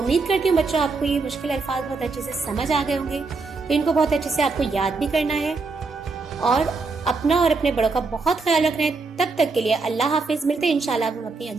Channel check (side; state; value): left; quieter; 4.1 dB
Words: کرتی ہوں بچوں آپ کو یہ مشکل الفاظ بہت اچھے سے سمجھ آ گئے ہوں گے۔ تو ان کو بہت اچھے سے آپ کو یاد بھی کرنا ہے، اور اپنا اور اپنے بڑوں کا بہت خیال رکھنا ہے۔ تب تک کے لیے اللہ حافظ، ملتے ہیں انشاءاللہ ہم اپنی